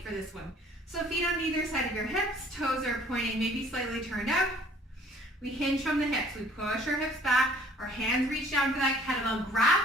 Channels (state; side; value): normal; both; correlation 0.56